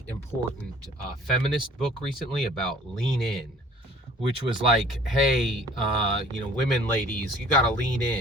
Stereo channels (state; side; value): normal; both; correlation 0.52